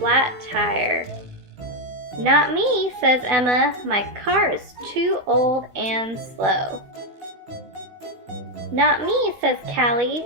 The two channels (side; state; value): left; late; 15 ms